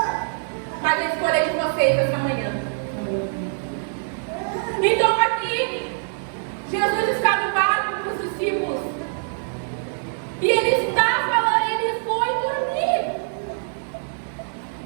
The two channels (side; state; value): left; silent; 63 dB below the other